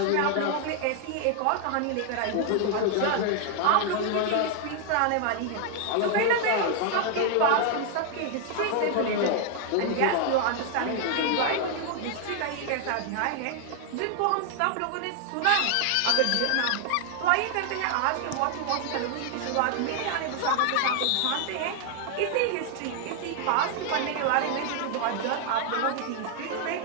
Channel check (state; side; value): different; both; correlation 0.00